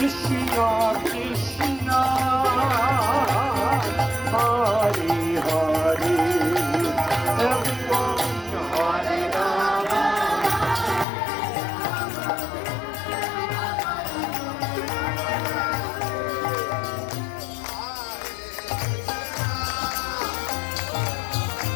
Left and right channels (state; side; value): drops out; right; at 11.1 s